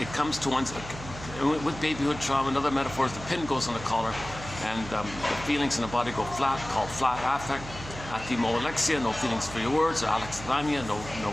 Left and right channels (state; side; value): noise; right; hum, 12 dB below the sound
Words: comes to one's, with babyhood trauma, another metaphor is the pin goes on the collar, and the feelings in the body go flat, called flat affect. Athymolexia, no feelings for your words, or alexithymia, no